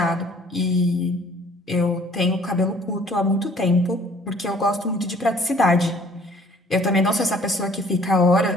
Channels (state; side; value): normal; both; correlation 0.56